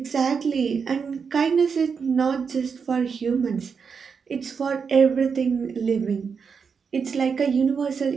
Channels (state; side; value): quieter; left; 5.9 dB